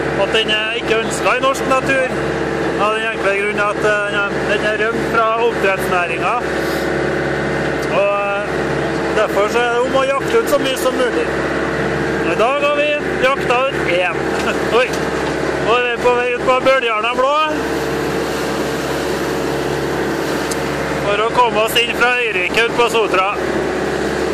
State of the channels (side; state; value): both; identical; correlation 1.00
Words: at den er ikke ønsket i norsk natur. Av den enkle grunn at den er rømt fra oppdrettsnæringen. Og derfor så er det om å jakte ut så mye som mulig. I dag har vi jakta ut én. Oi! Og vi er på vei ut på Bøljarna blå. For å komme oss inn fra Øyrike ut på Sotra.